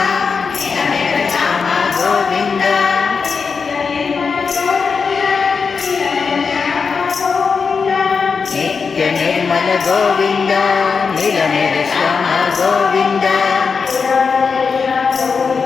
ನಿತ್ಯ ನಿರ್ಮಲ ಗೋವಿಂದ ನೀಲಮೇಘ ಶ್ಯಾಮ ಗೋವಿಂದ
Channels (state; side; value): quieter; right; 5.4 dB